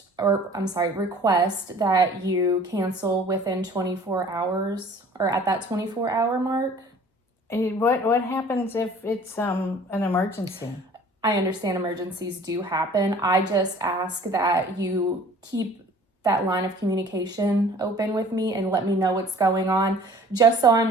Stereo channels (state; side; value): normal; both; correlation 0.50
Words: request that you cancel within 24 hours or at that 24-hour mark. What happens if it's an emergency? I understand emergencies do happen. I just ask that you keep that line of communication open with me and let me know what's going on, just so I'm